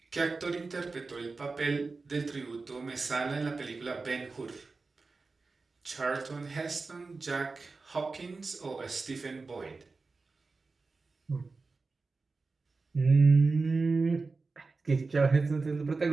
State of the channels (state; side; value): quieter; left; 4.0 dB